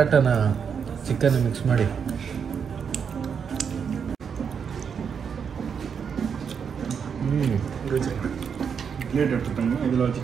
ಚಿಕನ್ ಮಿಕ್ಸ್ ಮಾಡಿ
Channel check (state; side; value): quieter; left; 6.8 dB